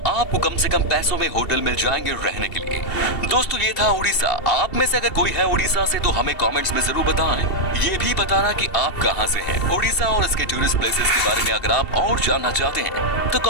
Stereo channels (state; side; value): late; right; 2.7 ms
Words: आपको कम से कम पैसों में होटल मिल जाएंगे रहने के लिए। दोस्तों ये था उड़ीसा। आप में से अगर कोई है उड़ीसा से तो हमें कमेंट्स में जरूर बताएं। ये भी बताना कि आप कहां से हैं। उड़ीसा और इसके टूरिस्ट प्लेसेस के बारे में अगर आप और जानना चाहते हैं तो